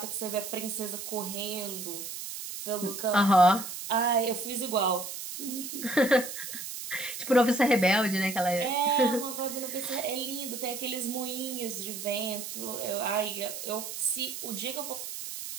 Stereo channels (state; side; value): noise; right; hiss, 8 dB below the sound